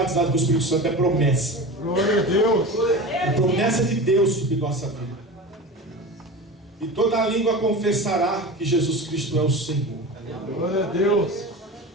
com o Espírito Santo. É promessa. Glória a Deus. É promessa de Deus sobre nossa vida. E toda a língua confessará que Jesus Cristo é o Senhor. Glória a Deus.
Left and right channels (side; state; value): both; normal; correlation 0.30